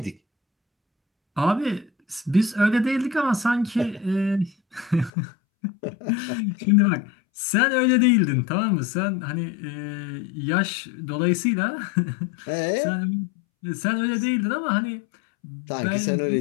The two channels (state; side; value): drops out; right; at 5.1 s